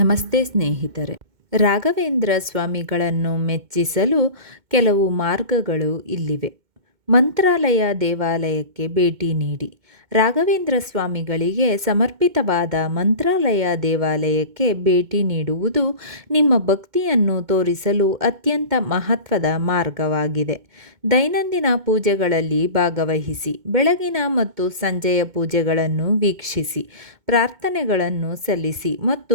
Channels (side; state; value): left; late; 2.2 ms